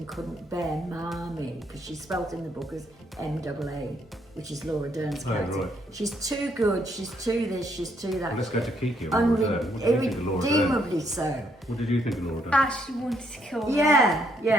couldn't bear Marmee, because she's spelt in the book as M-double-A, which is Laura Dern's Oh, character. right. She's too good, she's too this, she's too that. Well, let's go to Kiki on Laura Dern. What did you think of Laura Dern? Irredeemably so. What did you think of Laura Dern? Ashley wanted to kill her. Yeah,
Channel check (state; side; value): normal; both; correlation 0.72